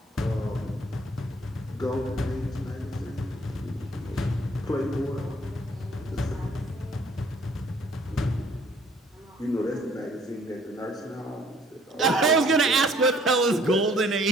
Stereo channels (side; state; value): both; normal; correlation 0.59